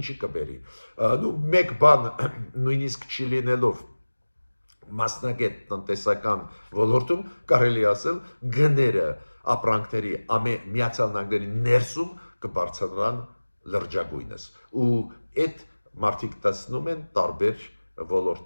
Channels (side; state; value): both; inverted; correlation -1.00